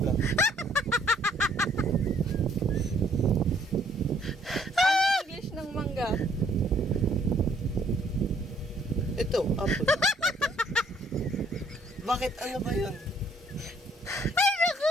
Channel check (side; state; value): both; normal; correlation 0.63